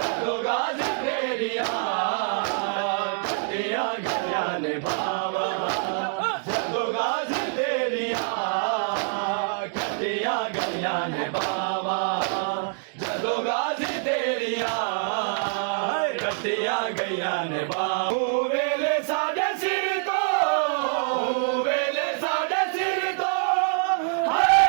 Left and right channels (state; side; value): silent; left; 61 dB below the other